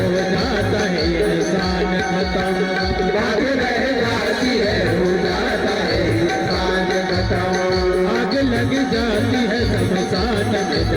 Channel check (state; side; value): identical; both; correlation 1.00